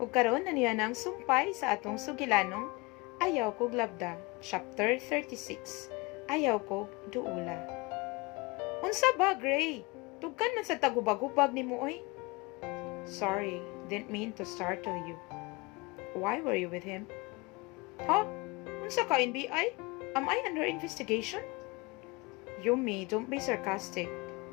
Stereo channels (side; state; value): right; quieter; 25.1 dB